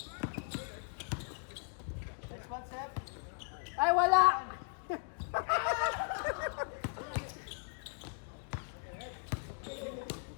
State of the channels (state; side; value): silent; right; 53 dB below the other